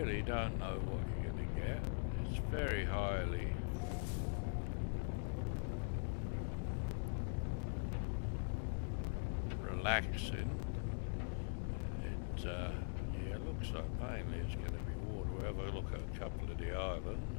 don't know what you're going to get. It's very highly relaxing. It looks like mainly it's going to be water. We'll have a look at a couple of the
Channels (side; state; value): right; silent; digital silence